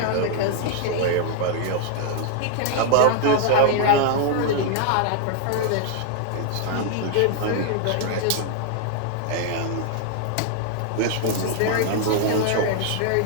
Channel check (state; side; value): different; both; correlation 0.00